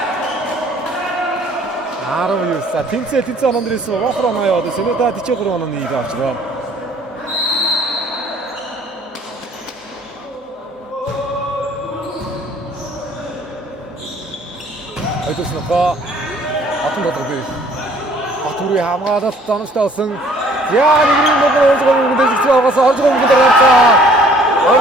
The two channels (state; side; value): normal; both; correlation 0.57